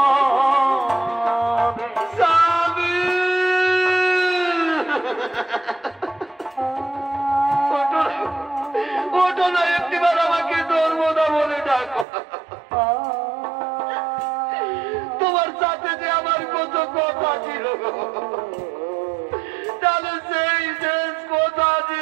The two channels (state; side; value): drops out; left; at 12.1 s